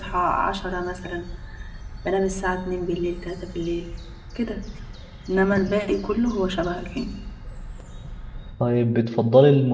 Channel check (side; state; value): both; identical; correlation 1.00